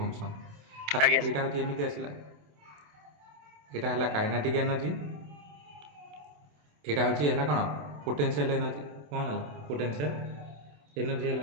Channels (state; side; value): late; left; 27 ms